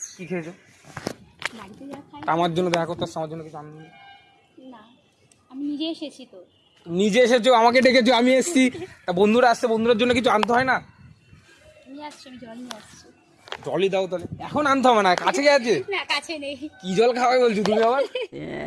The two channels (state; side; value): identical; both; correlation 1.00